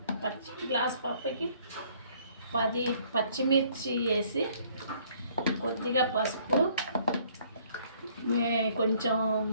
గ్లాస్ పప్పుకి 10 పచ్చిమిర్చి వేసి కొద్దిగా పసుపు, కొంచెం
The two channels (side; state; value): both; inverted; correlation -0.62